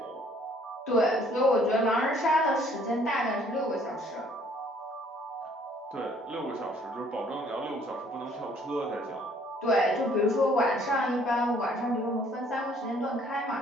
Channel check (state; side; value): normal; both; correlation 0.60